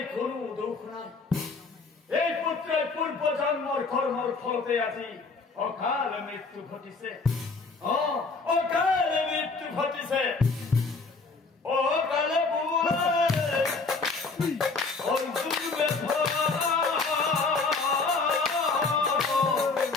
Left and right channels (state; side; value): quieter; right; 4.1 dB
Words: কোনো দুখ নাই এই পুত্রের পূর্ব জন্মর কর্মর ফলতে আজি অকাল মৃত্যু ঘটিছে অকালে মৃত্যু ঘটিছে অকালে